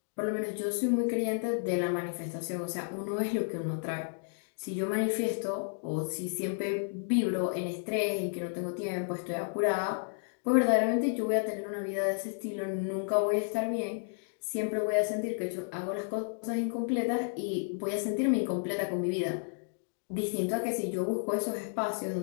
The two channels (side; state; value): right; silent; digital silence